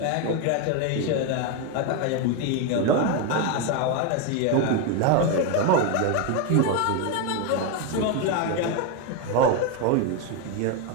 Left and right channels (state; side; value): different; both; correlation 0.02